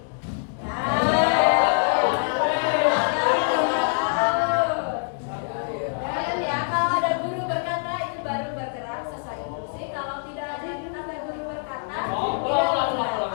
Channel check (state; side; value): silent; right; digital silence